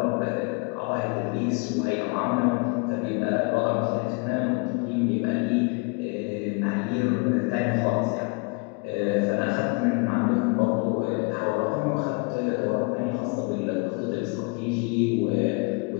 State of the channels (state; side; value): quieter; right; 32.2 dB